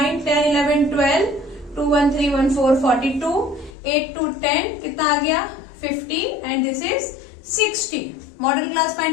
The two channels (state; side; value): drops out; right; at 3.8 s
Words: 10, 11, 12, 2, 1, 3, 1, 4, 42, 8 to 10 कितना आ गया 50 and this is 60। Model class